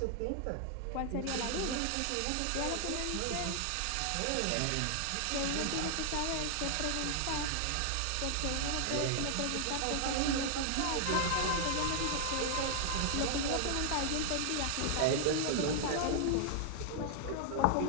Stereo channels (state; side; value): different; both; correlation 0.00